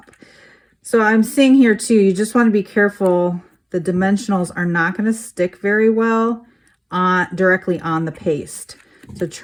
So I'm seeing here too, you just want to be careful. The dimensionals are not going to stick very well directly on the paste. So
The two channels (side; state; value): both; identical; correlation 1.00